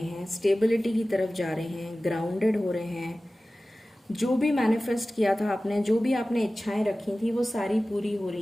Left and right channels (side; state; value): both; normal; correlation 0.96